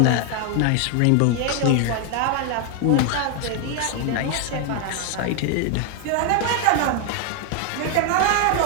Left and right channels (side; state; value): both; different; correlation 0.00